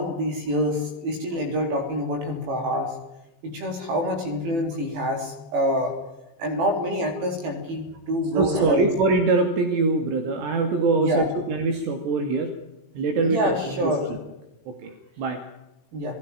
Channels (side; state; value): left; late; 18 ms